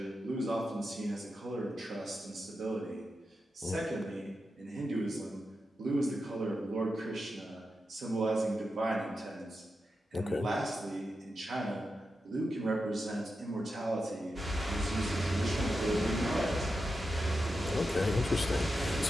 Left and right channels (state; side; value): normal; both; correlation 0.89